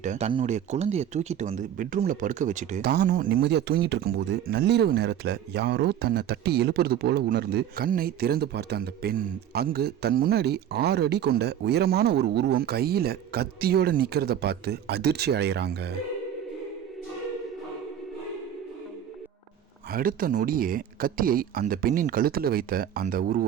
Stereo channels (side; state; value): left; quieter; 9.9 dB